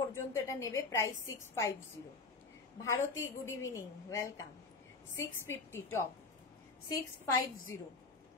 এটা নেবে। Price 650। Bharati good evening, welcome. 650 top, 650।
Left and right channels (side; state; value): right; quieter; 4.0 dB